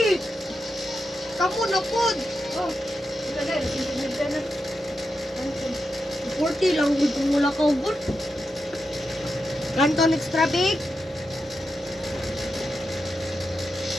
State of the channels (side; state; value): both; normal; correlation 0.88